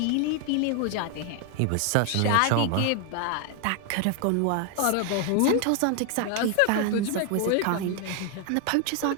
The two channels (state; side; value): different; both; correlation 0.01